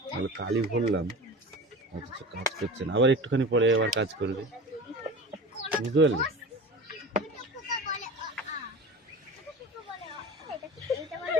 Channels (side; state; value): both; normal; correlation 0.34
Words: তাহলে কালি ভরলাম অথচ কাজ করছে না। আবার একটুখানি পরে আবার কাজ করবে, বুঝতে পারলি?